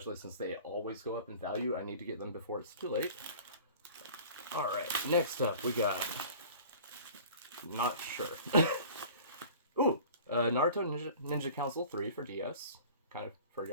since they always go up in value. I need to get them before it's too late. Alright, next up we got, not sure. Ooh, Naruto Ninja Council 3 for DS. Kind of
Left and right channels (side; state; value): both; inverted; correlation -0.43